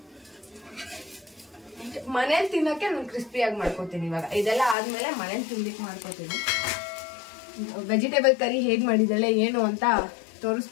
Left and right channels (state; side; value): drops out; right; at 4.8 s